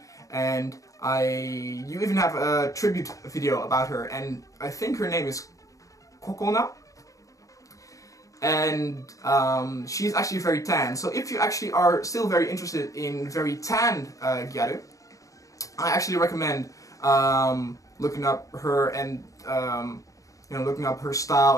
and you even have a tribute video about her, and I think her name is Kokona. And she's actually very tan, so if you actually are still very interested in very tan gyaru, I actually recommend looking up her and you know, looking up her style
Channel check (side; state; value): right; late; 0.16 ms